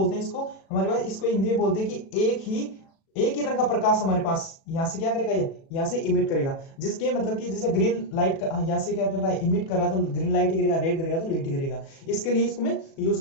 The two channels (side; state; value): right; late; 37 ms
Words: हैं इसको, हमारे पास इसको हिंदी में बोलते हैं कि एक ही रंग का प्रकाश हमारे पास यहाँ से क्या करेगा, ये यहाँ से इमिट करेगा। जिसके मतलब कि जैसे ग्रीन लाइट यहाँ से क्या कर रहा है, इमिट कर रहा है, तो ग्रीन लाइट ही करेगा, रेड करेगा तो रेड ही करेगा। इसके लिए इसको में यूज